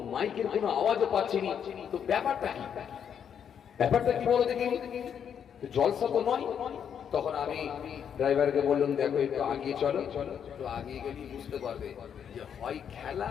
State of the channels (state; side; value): quieter; right; 8.1 dB